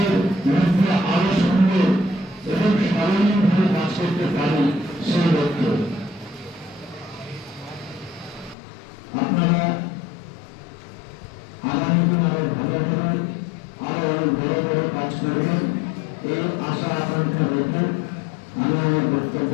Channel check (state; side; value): drops out; right; at 8.6 s